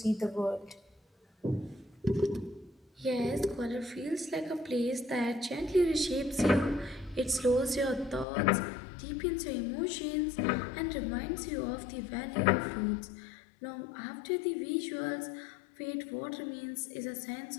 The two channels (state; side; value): drops out; right; at 8.2 s